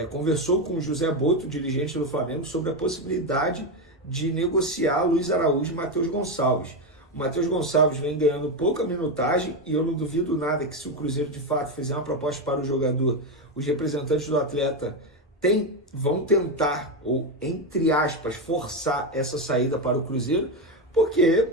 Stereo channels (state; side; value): normal; both; correlation 0.11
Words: conversou com o José Boto, dirigente do Flamengo, sobre a possibilidade de negociar Luiz Araújo e Matheus Gonçalves. O Matheus Gonçalves vem ganhando pouca minutagem e eu não duvido nada que, se o Cruzeiro de fato fizer uma proposta para o jogador, os representantes do atleta vão tentar, ou entre aspas, forçar essa saída para o Cruzeiro, porque